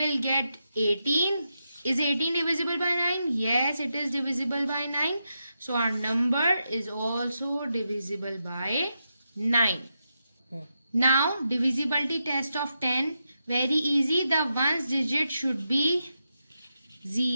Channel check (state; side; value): inverted; both; correlation -0.86